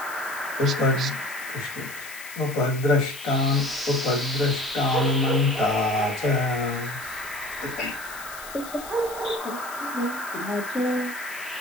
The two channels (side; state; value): left; noise; hiss, 14 dB below the sound